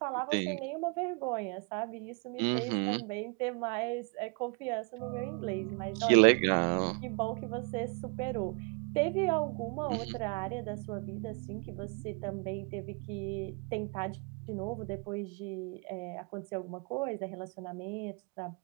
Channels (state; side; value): quieter; left; 33.4 dB